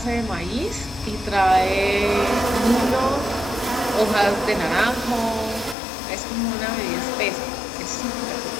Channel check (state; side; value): drops out; right; at 5.8 s